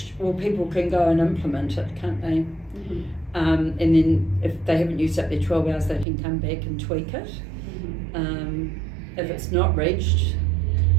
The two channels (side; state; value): left; drops out; at 6.1 s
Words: well, people can go and implement it, can't they? And then if they haven't used up their 12 hours, they can come back and tweak it. If it's not reached,